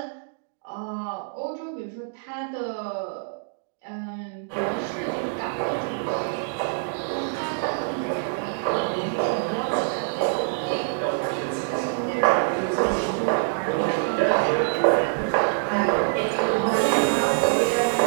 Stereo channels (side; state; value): left; silent; digital silence